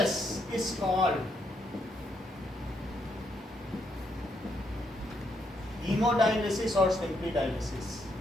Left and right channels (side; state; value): both; normal; correlation 0.76